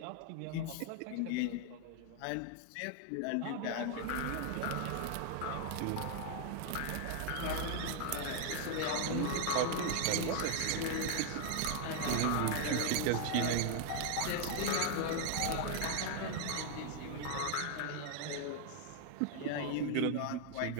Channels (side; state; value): both; different; correlation 0.00